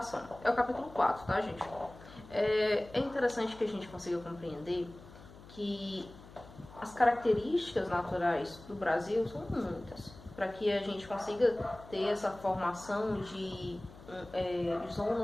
É o capítulo 4, tá, gente? É interessante que a gente consiga compreender que as características naturais do Brasil são muitas, para que a gente consiga ter essa formação de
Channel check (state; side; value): noise; left; hum, 19 dB below the sound